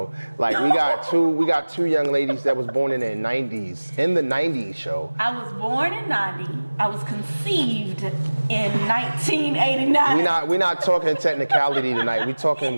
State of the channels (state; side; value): inverted; both; correlation -1.00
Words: Like we got two young ladies that was born in the 90s, in the 90s show. I was born in 90. I was conceived in 1989. We're not talking technicality tonight. We're talking